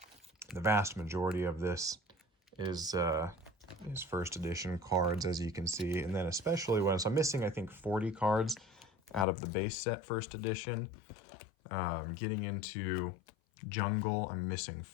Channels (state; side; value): drops out; right; at 9.2 s